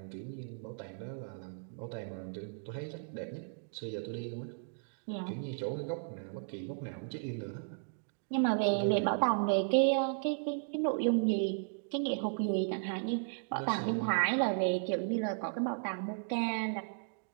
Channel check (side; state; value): left; silent; digital silence